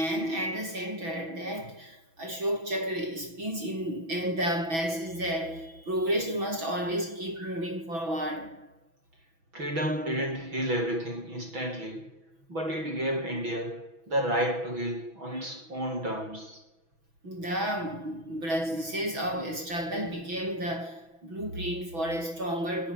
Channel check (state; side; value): late; left; 6.1 ms